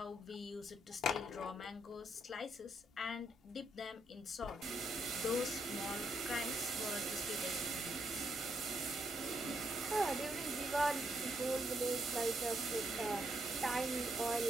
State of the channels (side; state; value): both; normal; correlation 0.77